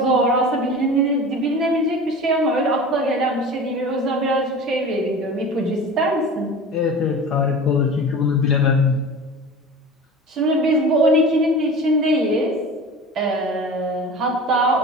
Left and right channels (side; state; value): both; normal; correlation 0.35